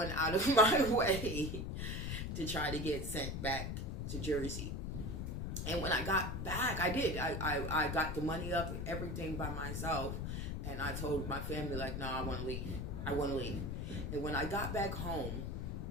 out of my way to try to get sent back to Jersey. And when I got back, I did. I got the money up and everything by myself. And I told my family, no, I want to leave. I want to leave. And when I got back home,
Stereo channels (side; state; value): left; noise; rumble, 3 dB below the sound